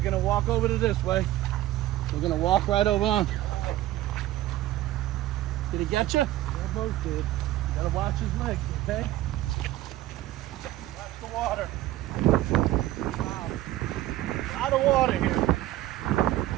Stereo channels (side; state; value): left; quieter; 15.1 dB